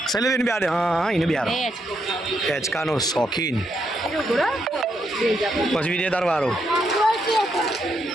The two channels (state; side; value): normal; both; correlation 0.79